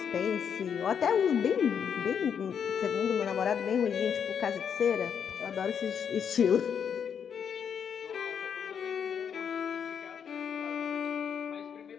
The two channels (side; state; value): right; quieter; 7.6 dB